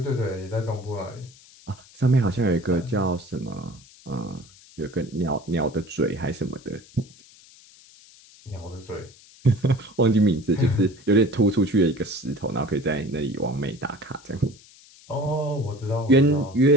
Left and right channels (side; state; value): left; noise; hiss, 24 dB below the sound